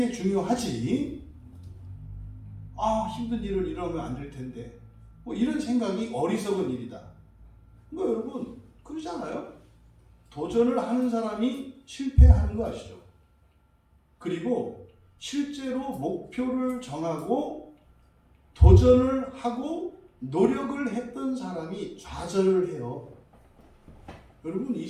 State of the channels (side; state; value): both; identical; correlation 1.00